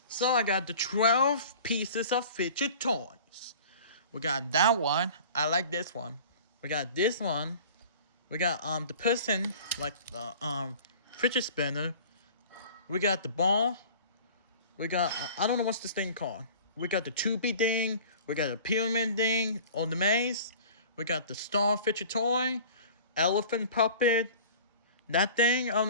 So I got the 12 pieces of fidget toys. We got that one. I like this one. We got this one. We got the person, like the fidget spinner. We got the ball. We got I don't know what's this thing called. We got the tubey thing. We got the pyramid thing on the maze. We got the star fidget toy, elephant puppet. That thing, I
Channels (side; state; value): both; inverted; correlation -0.44